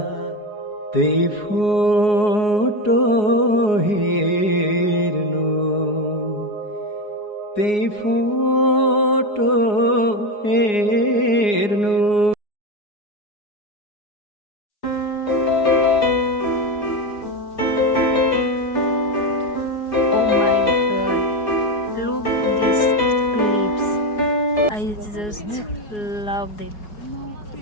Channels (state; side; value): late; right; 4.8 ms